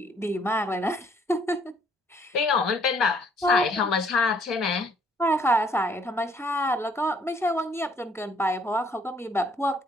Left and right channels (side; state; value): both; normal; correlation 0.63